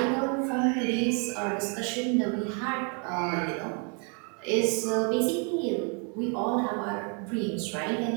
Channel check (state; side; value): quieter; left; 37.7 dB